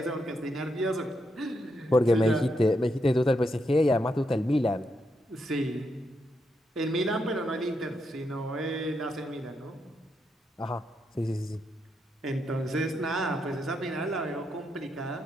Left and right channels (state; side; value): normal; both; correlation 0.81